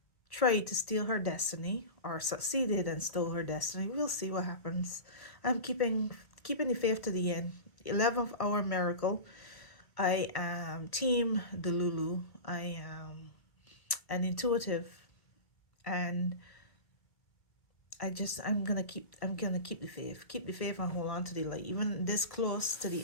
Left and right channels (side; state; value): right; late; 1.7 ms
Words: tried to steal her destiny, or succeeded and stole her destiny. We'll see what happens. I'm keeping the faith to the end. 11th hour miracle. I am team Delulu. I am an intuitive, and I'm gonna keep the faith. Keep the faith and hold on to the light. Even this close to